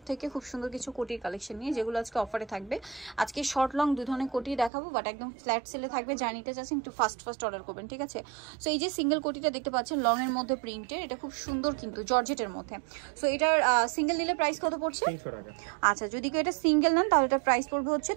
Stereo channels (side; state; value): left; drops out; at 4.7 s